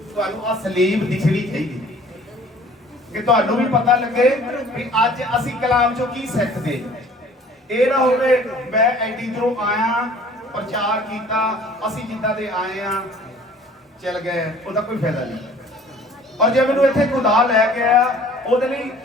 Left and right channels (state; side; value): normal; both; correlation 0.51